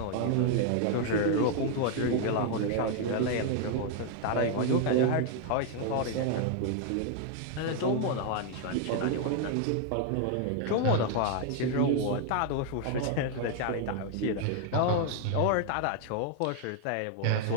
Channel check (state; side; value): different; both; correlation 0.00